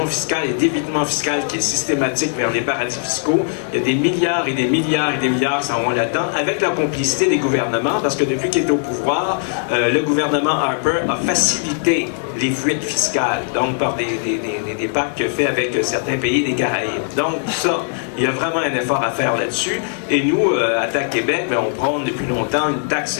fiscale et d'évitement fiscal qui est systématique vers les paradis fiscaux. Il y a des milliards et des milliards et des milliards qui s'en vont là-dedans, avec la complicité des gouvernements, parce que depuis qu'il est au pouvoir, le gouvernement Harper a facilité les fuites fiscales, donc par des pactes qu'il fait avec certains pays des Caraïbes. Donc ça, il y a vraiment un effort à faire là-dessus. Et nous, à TAC Québec, on prône depuis longtemps une taxe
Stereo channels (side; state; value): right; silent; digital silence